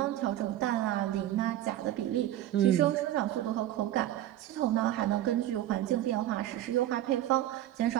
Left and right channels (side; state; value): left; quieter; 13.4 dB